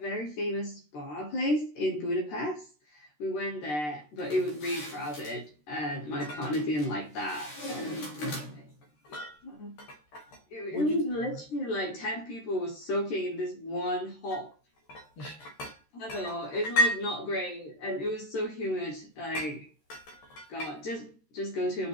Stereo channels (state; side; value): late; right; 13 ms